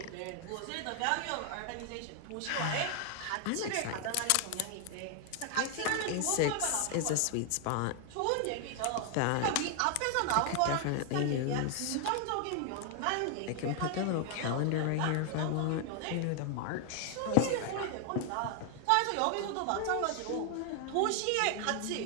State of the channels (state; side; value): different; both; correlation 0.00